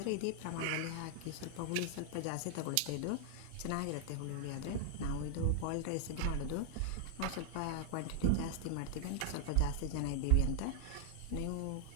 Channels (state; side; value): different; both; correlation 0.00